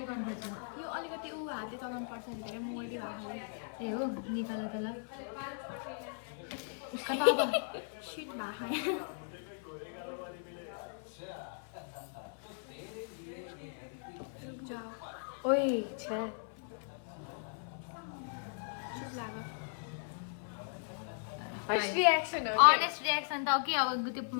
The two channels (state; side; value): silent; right; 53 dB below the other